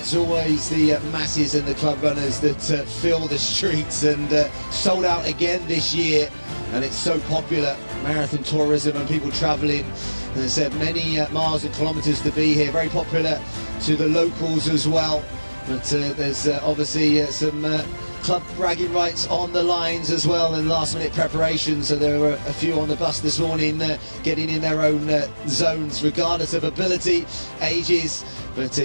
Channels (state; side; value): inverted; both; correlation -1.00